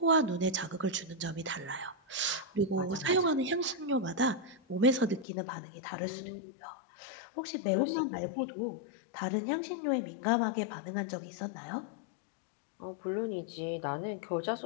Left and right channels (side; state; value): right; drops out; at 5.2 s